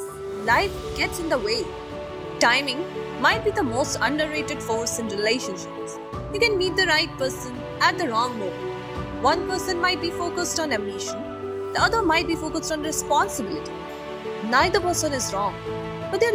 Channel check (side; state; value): both; identical; correlation 1.00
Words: life gets in the way. Timing might be the most underrated force in relationships. You can meet the right person at the wrong moment. One person might be focused on ambition, the other might be focused on responsibility. Neither person is wrong, but